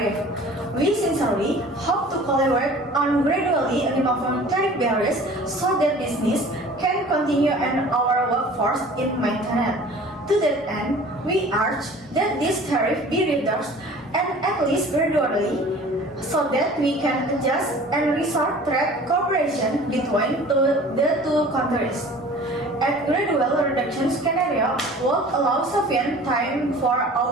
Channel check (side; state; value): both; normal; correlation 0.45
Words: We sincerely hope to collaborate on gradually removing tariff barriers so that business can continue and our workforce is maintained. To that end, we urge that this tariff be reduced and at least gradually so that we can adjust and restore trade cooperation between the two countries. A gradual reduction scenario will allow sufficient time for